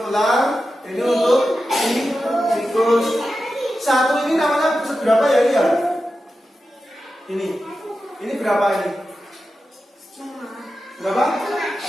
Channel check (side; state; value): both; normal; correlation 0.91